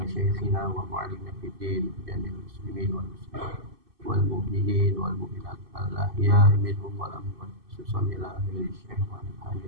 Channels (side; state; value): left; late; 2.6 ms